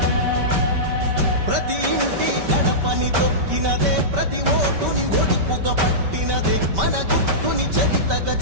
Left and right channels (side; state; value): left; late; 5.2 ms